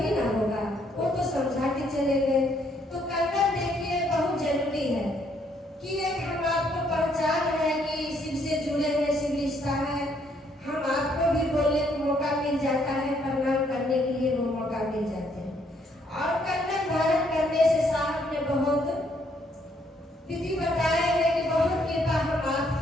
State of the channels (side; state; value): both; normal; correlation 0.69